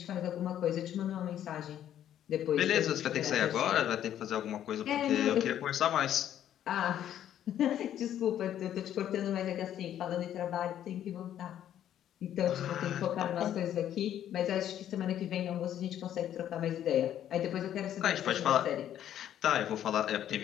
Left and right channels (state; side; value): quieter; right; 10.9 dB